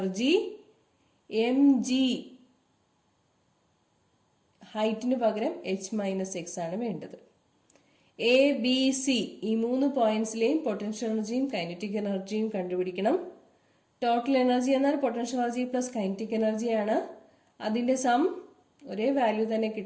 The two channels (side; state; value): both; identical; correlation 1.00